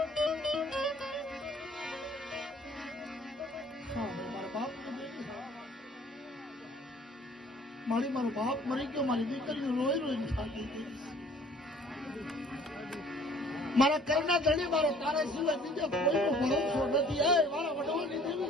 મારો બાપ મરી ગયો, મારી દીકરીઓ રોઈ રોઈને થાકી ગઈ. મારા કરના ધણી મારો તારા સિવાય બીજા કોઈનો ભરોસો નથી. એ મારા વડવાની દેવી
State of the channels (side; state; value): both; normal; correlation 0.55